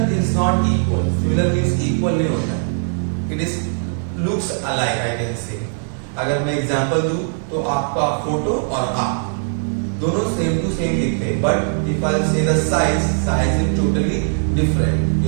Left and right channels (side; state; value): left; silent; digital silence